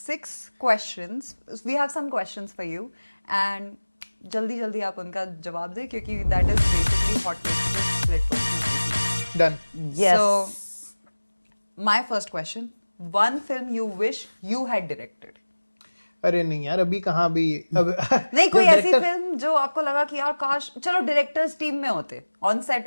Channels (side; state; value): both; inverted; correlation -1.00